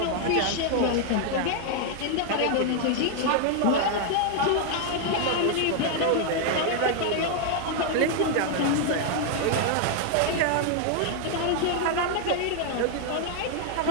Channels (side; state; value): both; different; correlation 0.00